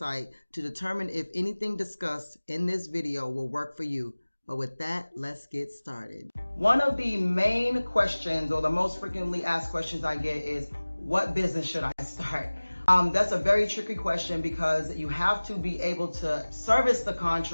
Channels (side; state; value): both; inverted; correlation -1.00